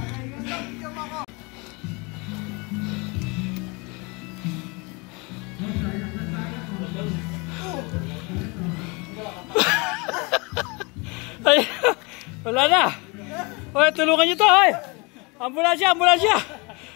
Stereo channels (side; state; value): right; quieter; 28.6 dB